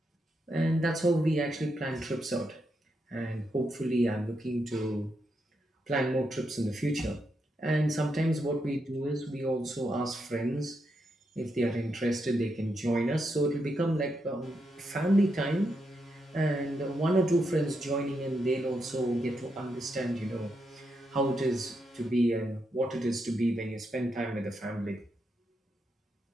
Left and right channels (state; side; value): normal; both; correlation 0.82